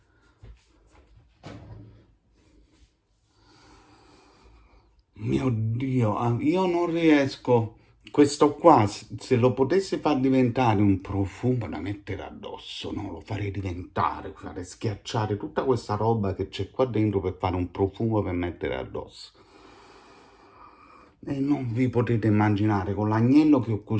Mio Dio, io non riesco. Questo qua, se lo potessi far diventare un profumo da mettere addosso, no? Lo farei diventare, farei schiacciare tutta questa roba che c'è qua dentro per fare un profumo per mettere addosso. E non vi potete immaginare, con l'agnello che ho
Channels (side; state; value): both; identical; correlation 1.00